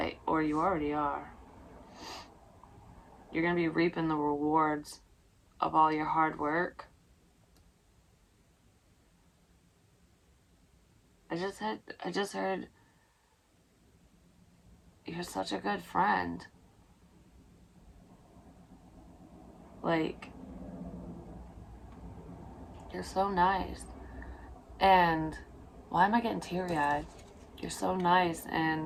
or you already are. You're going to be reaping the rewards of all your hard work. I just heard you're such a good friend. Like, you're so nice. And why am I getting teary-eyed? You're so nice,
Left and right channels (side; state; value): both; identical; correlation 1.00